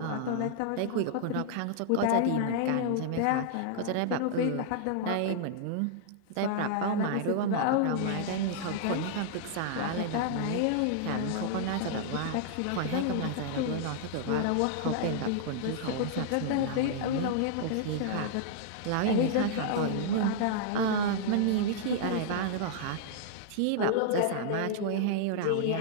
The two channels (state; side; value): different; both; correlation -0.01